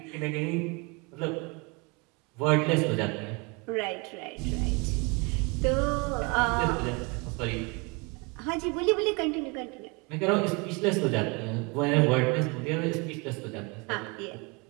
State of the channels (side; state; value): left; quieter; 29.0 dB